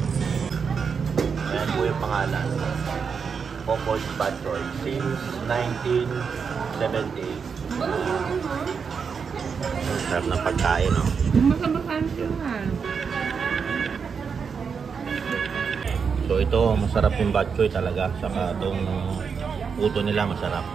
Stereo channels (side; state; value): left; quieter; 6.0 dB